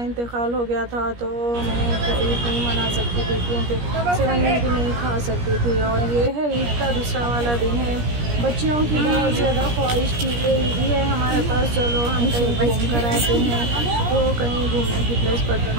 हो गया था, तो मैं ईद नहीं मना सकती थी क्योंकि सेवइयाँ भी नहीं खा सकती थी। और ये है ईद का दूसरा वाला दिन है। बच्चियों की बहुत ज़्यादा ख्वाहिश थी कि ईद ही है हमारे पास, चलो हम कहीं घूम कर आते हैं। तो कहीं घूमने की प्लेस पर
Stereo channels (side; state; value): left; late; 17 ms